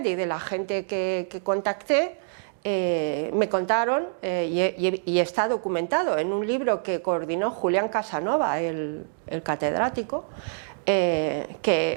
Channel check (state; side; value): silent; left; digital silence